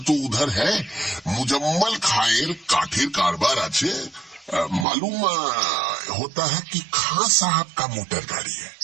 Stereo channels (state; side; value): drops out; left; at 4.9 s